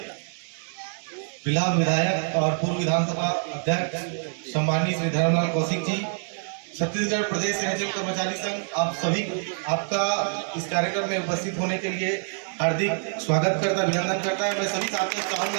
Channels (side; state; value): left; silent; 59 dB below the other